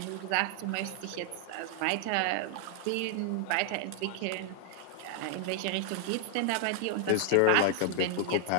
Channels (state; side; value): different; both; correlation 0.00